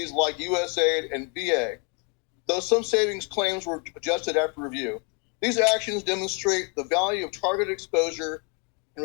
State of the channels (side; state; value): right; quieter; 35.2 dB